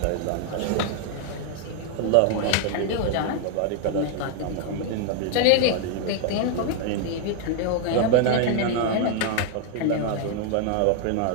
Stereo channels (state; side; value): different; both; correlation 0.00